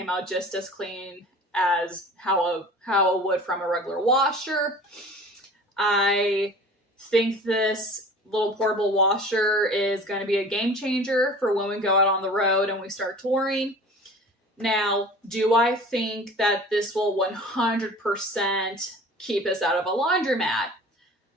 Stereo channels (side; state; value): both; normal; correlation 0.42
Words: out just as clean as how it would from a regular washer. I think this little portable washer is going to be a game changer for when we go out on the road and we start touring. Now, do I think that this will 100% keep us out of a laundromat?